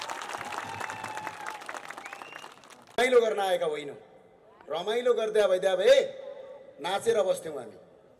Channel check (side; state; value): both; identical; correlation 1.00